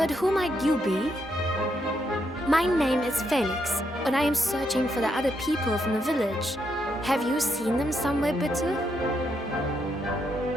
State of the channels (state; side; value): normal; both; correlation 0.78